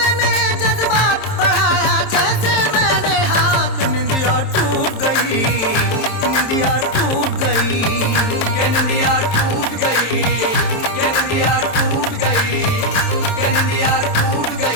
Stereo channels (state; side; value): late; right; 27 ms